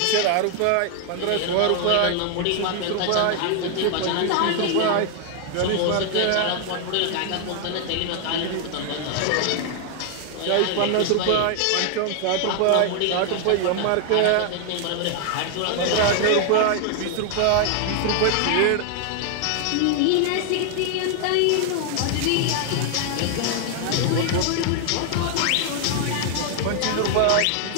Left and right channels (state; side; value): different; both; correlation 0.00